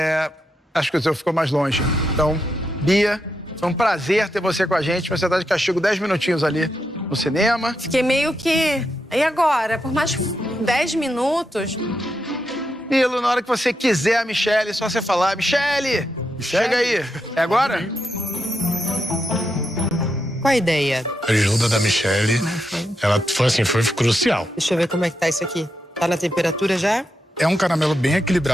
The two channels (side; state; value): both; normal; correlation 0.84